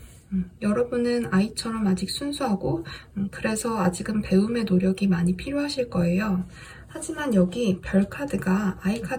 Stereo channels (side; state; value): both; identical; correlation 1.00